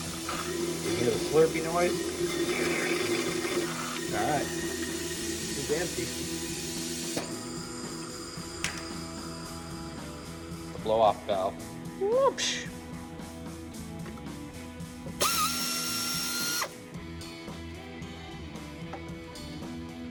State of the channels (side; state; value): both; identical; correlation 1.00